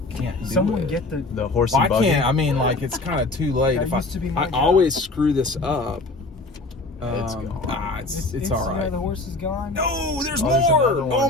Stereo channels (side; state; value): right; quieter; 3.0 dB